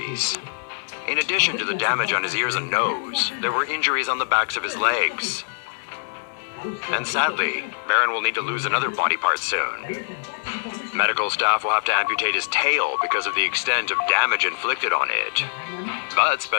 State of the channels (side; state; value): right; silent; digital silence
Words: In addition to the damage on his ears and nose, there were injuries on the backs of his legs. And sadly, Baron will need to lose another body part soon. Medical staff will have to amputate his tail because of the extent of damage inflicted on it. But